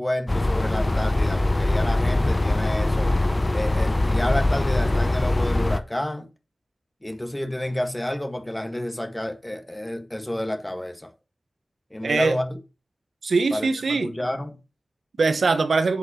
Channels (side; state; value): both; normal; correlation 0.96